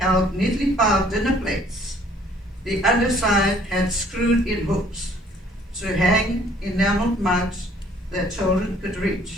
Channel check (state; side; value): normal; both; correlation 0.59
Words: neatly piled dinner plates. The underside had screwed-in hooks to hang enameled mugs that children could